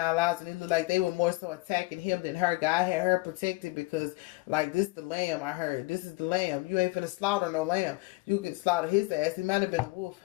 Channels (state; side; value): quieter; right; 23.0 dB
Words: lives, and it looked like they were more so attacking him than her. God had her protected because, like, this the lamb, I heard. This is the lamb. You ain't finna slaughter no lamb. You could slaughter his ass. He might have been a wolf.